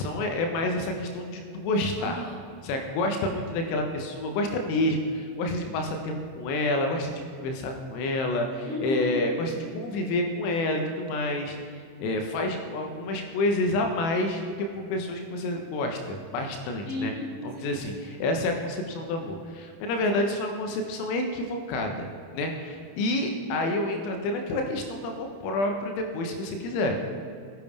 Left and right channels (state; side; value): late; right; 30 ms